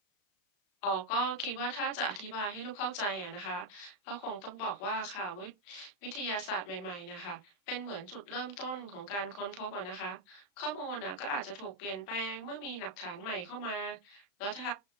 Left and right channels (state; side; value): late; right; 35 ms